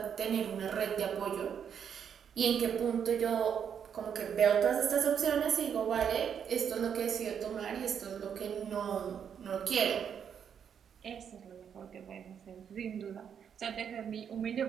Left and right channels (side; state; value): left; quieter; 7.9 dB